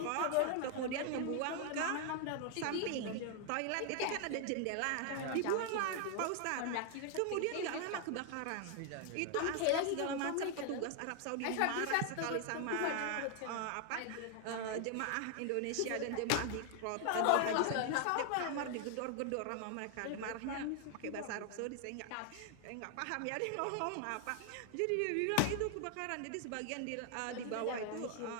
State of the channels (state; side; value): different; both; correlation 0.00